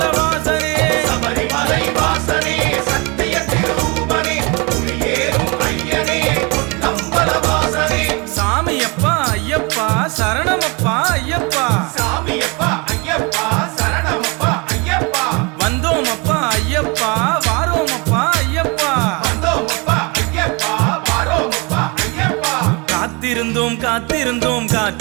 வாசனே. சபரிமலை வாசனே சத்திய திருரூபனே புலியேறும் ஐயனே பொன்னம்பல வாசனே. சாமியப்பா ஐயப்பா சரணமப்பா ஐயப்பா. சாமியப்பா ஐயப்பா சரணமப்பா ஐயப்பா. வந்தோமப்பா ஐயப்பா வாரோமப்பா ஐயப்பா. வந்தோமப்பா ஐயப்பா வாரோமப்பா ஐயப்பா. காத்திருந்தோம் காத்திருந்தோம்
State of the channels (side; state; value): left; quieter; 29.1 dB